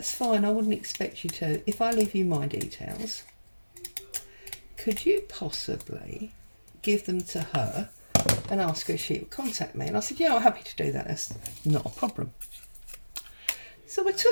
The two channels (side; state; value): both; inverted; correlation -1.00